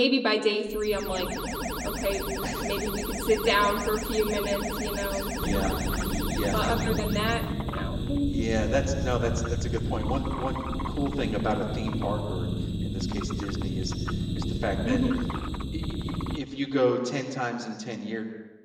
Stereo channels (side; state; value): both; identical; correlation 1.00